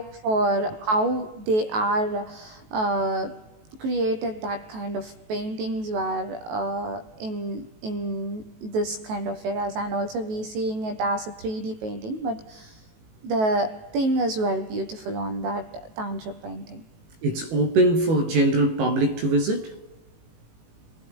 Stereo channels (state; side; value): late; left; 19 ms